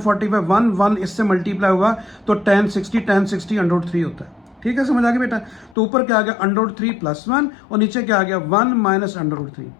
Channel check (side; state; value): right; drops out; at 5.8 s